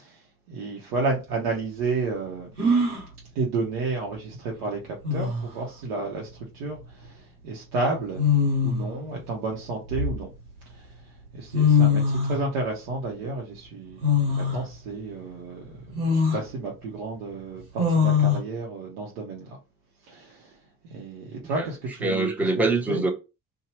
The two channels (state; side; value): normal; both; correlation 0.15